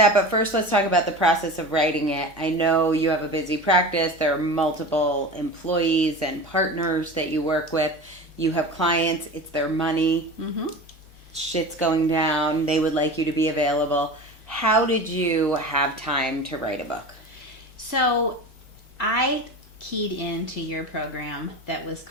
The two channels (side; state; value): both; normal; correlation 0.32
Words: but first let's talk about the process of writing it. I know you have a busy practice. There are multiple employees and partners that you work with. You have clients. It's their money. Mm-hmm. Shit's going down. They would like you to be available. How did you have time to write a book? So I keyed into your program that was